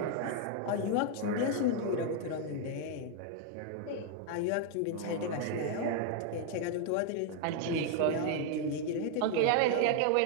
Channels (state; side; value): different; both; correlation 0.00